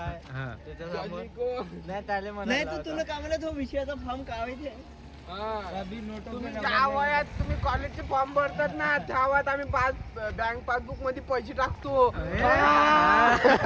हा. नाही तर तुला कामाला तो विषयाचा फॉर्म काय माहिती. तुम्ही ज्या वयात तुम्ही कॉलेजचे फॉर्म भरतात ना त्या वयात आम्ही बँक पासबुक मध्ये पैसे टाकतो.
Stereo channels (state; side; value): identical; both; correlation 1.00